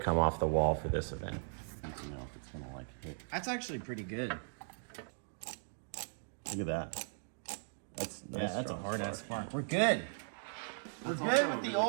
off the wall for this event. I don't know if it's gonna like hit. That's actually pretty good. Look at that. That's Yeah, that's a strong hard ass spark. spark. We're good. We're That's good also with the really-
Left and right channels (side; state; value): left; silent; digital silence